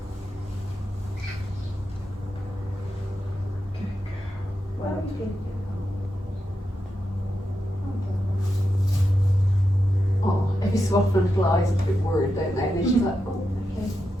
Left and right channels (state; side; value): normal; both; correlation 0.87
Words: Well, good girl. just so often little eyes are a bit worried, don't they? And then she's like, oh, okay.